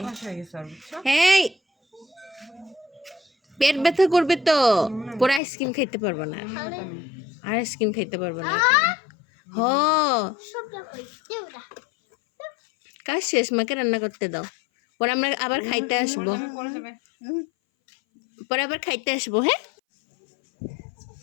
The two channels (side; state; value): right; drops out; at 5.4 s